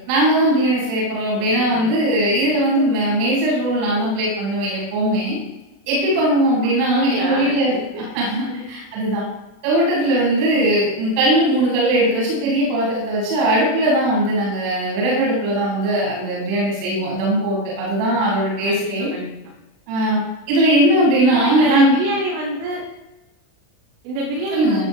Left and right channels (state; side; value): late; left; 36 ms